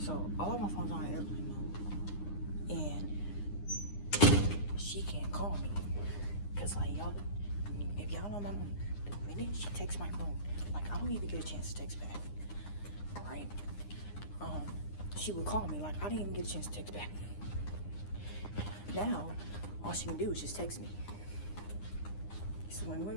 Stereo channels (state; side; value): late; right; 9.8 ms